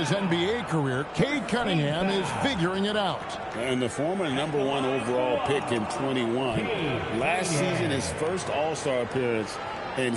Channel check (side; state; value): both; identical; correlation 1.00